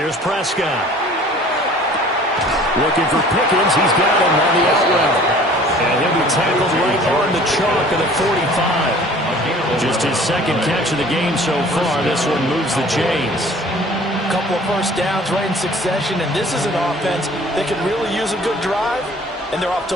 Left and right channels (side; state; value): both; normal; correlation 0.49